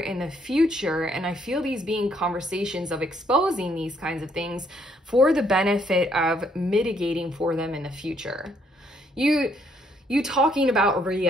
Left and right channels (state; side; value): normal; both; correlation 0.69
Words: the future. And I feel these being conversations of exposing these kinds of things for the benefit of mitigating for them in the future. You talking about